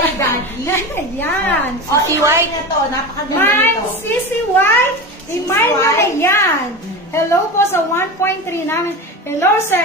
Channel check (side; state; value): both; normal; correlation 0.26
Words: Daddy. Yan. Si White na to. Napakaganda Mine, nito. Sisi White. Imay nyo na yan. Hello po sa 1.3 namin. Hello,